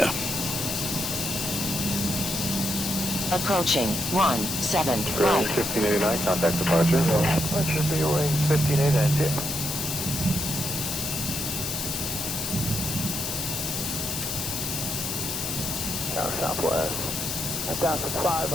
Approaching 17 right. 1589. Contact departure. That should be range 1589. Tower southwest. Down to 5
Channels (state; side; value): noise; left; hiss, 3 dB below the sound